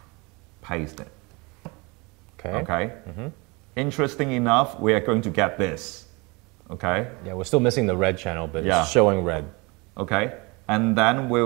paste it. Okay. Okay. Interesting enough, we are going to get this. Okay. Yeah, we're still missing the red channel, but Yeah. it's showing red. Okay, and then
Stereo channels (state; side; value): quieter; left; 26.9 dB